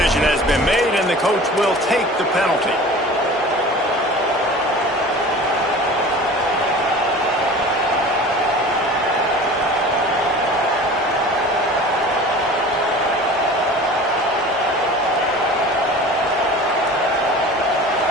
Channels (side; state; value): both; normal; correlation 0.40